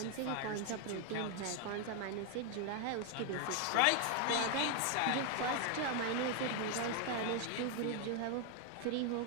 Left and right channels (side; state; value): both; different; correlation 0.01